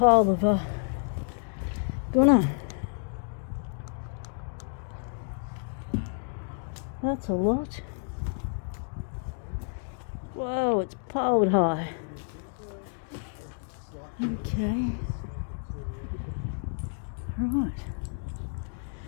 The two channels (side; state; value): right; silent; 58 dB below the other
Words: of gunner. That's a lot. Whoa, it's piled high. Okay. Right.